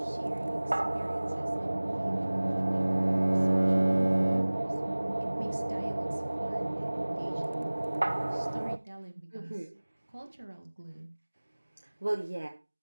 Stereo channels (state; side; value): inverted; both; correlation -1.00